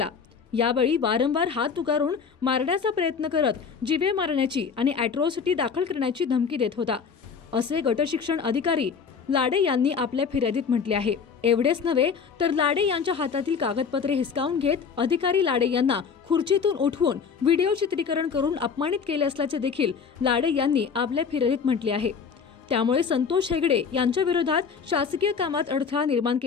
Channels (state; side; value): quieter; right; 6.1 dB